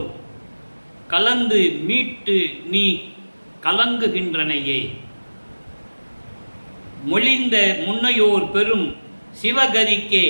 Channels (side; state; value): both; inverted; correlation -1.00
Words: கலந்து மீட்டு நீ கலங்குகின்றனையே. மொழிந்த முன்னையோர் பெரும் சிவகதிக்கே